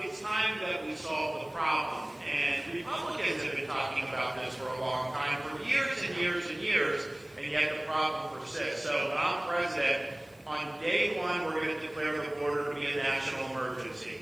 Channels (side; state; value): left; noise; hiss, 30 dB below the sound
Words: It's time that we solve the problem. And Republicans have been talking about this for a long time, for years and years and years, and yet the problem persists. So when I'm president, on day one, we're going to declare the border to be a national emergency.